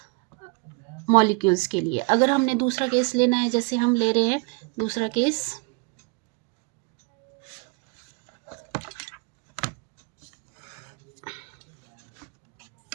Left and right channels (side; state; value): left; quieter; 31.6 dB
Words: मॉलिक्यूल्स के लिए। अगर हमने दूसरा केस लेना है, जैसे हम ले रहे हैं दूसरा केस,